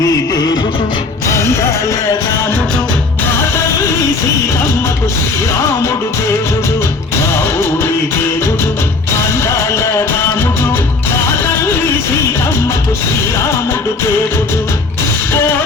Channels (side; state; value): right; quieter; 3.8 dB